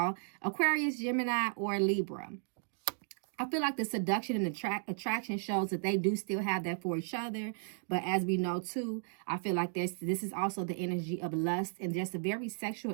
Aquarius, Gemini, or Libra. I feel like the seduction and attraction shows that they do still have that for each other. But as we know, too, I feel like this is also the energy of lust and just a very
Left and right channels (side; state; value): left; silent; digital silence